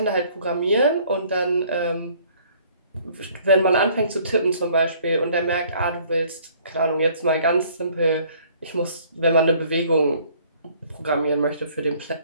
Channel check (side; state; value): both; inverted; correlation -0.58